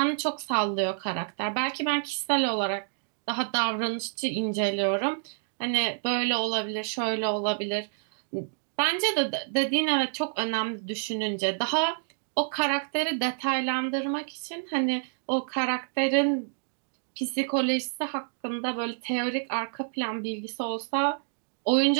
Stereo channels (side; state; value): left; silent; digital silence